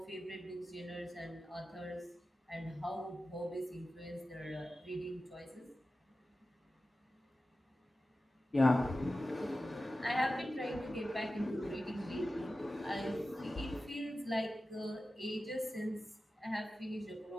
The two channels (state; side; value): normal; both; correlation 0.94